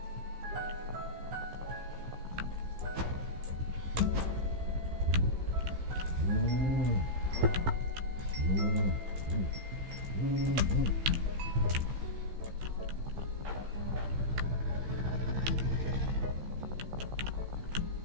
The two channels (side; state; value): left; late; 15 ms